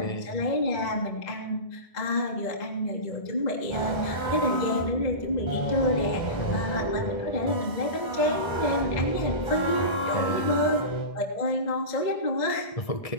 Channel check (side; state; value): right; late; 2.0 ms